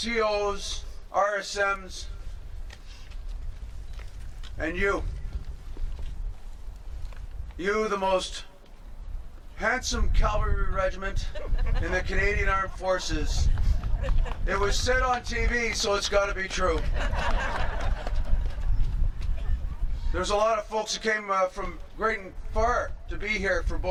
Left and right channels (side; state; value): both; identical; correlation 1.00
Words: RSMs, and you, the most handsome cavalry regiment in the Canadian Armed Forces. It was said on TV, so it's got to be true. There's a lot of folks who came from great and far to be here for